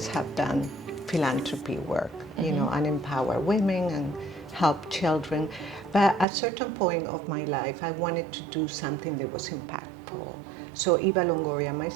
have done philanthropy work, you know, and empower women and help children. But at a certain point of my life, I wanted to do something that was impactful. So Eva Longoria and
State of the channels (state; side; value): drops out; left; at 6.2 s